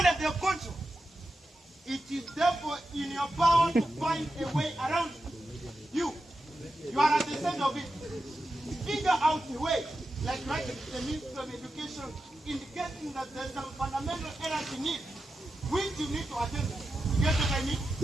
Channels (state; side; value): normal; both; correlation 0.90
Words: in your power to find a way around it. You are at the center of it. Figure out a way, like writing to the Ministry of Education, indicating that there's some fundamental errors in it, which you need to attend to. You get what I mean?